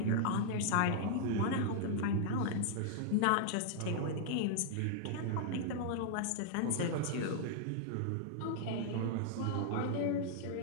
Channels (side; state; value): both; different; correlation -0.01